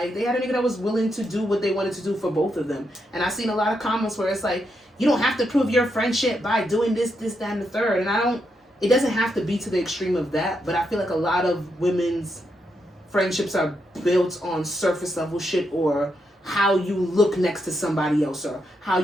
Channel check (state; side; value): normal; both; correlation 0.82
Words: they had a nigga that was willing to do what they wanted to do for both of them. And I've seen a lot of comments where it's like, you don't have to prove your friendship by doing this, that, and the third. And it doesn't have to be to the extreme of that, but I feel like a lot of women's friendships are built on surface level shit, or how you look next to somebody else, or how